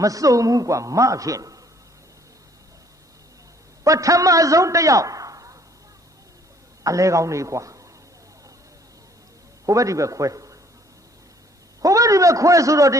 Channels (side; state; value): both; normal; correlation 0.61